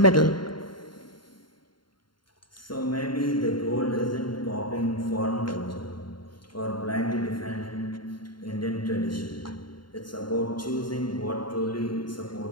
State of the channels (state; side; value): late; right; 0.72 ms